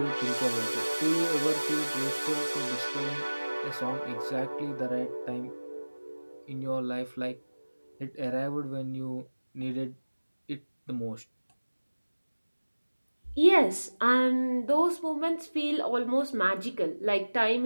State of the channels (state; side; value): inverted; both; correlation -1.00